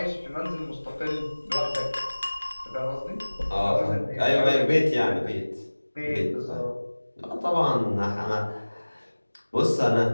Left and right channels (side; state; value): both; inverted; correlation -1.00